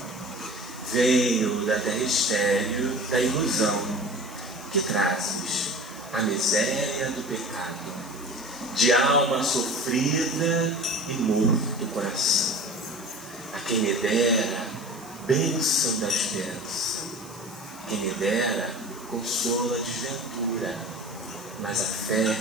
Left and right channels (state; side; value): noise; right; hiss, 23 dB below the sound